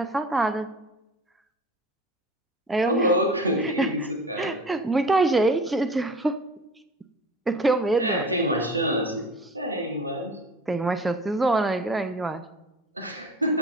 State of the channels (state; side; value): normal; both; correlation 0.38